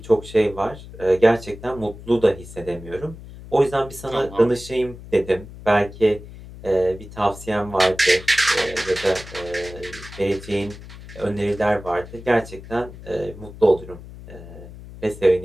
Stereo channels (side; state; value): left; noise; hum, 15 dB below the sound